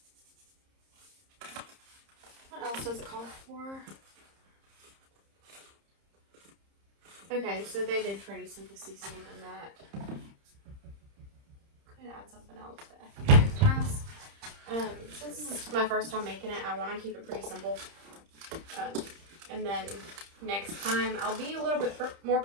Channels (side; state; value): left; late; 30 ms